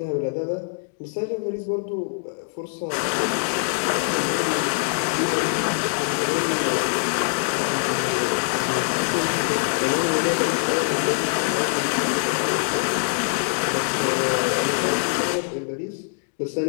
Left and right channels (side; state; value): right; silent; digital silence